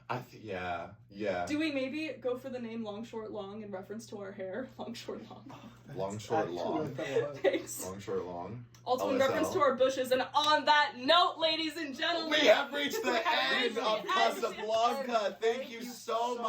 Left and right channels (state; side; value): identical; both; correlation 1.00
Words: Yeah. Do we maybe go for the name Long Short Long in reference to our hair? Long Short Long. Long, short, Actually, long. what that was. Thanks. Long, short, long. Also in LSL. reference to our bushes. And on that note, ladies and gentlemen, We have reached the we have end reached of the Casablanca. Thank you so so